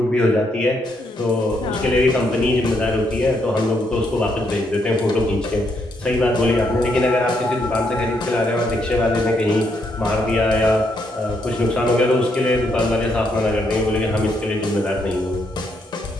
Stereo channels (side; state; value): both; normal; correlation 0.76